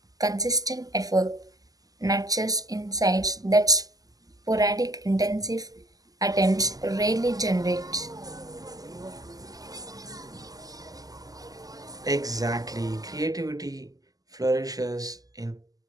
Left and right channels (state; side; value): late; left; 0.17 ms